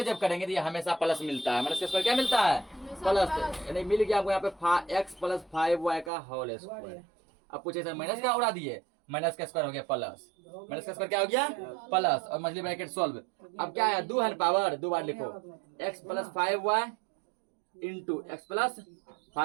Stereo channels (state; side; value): drops out; left; at 6.1 s